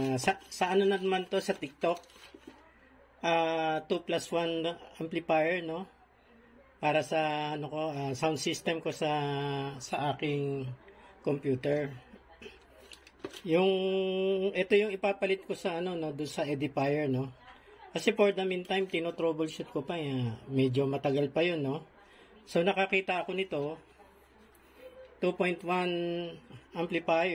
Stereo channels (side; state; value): both; identical; correlation 1.00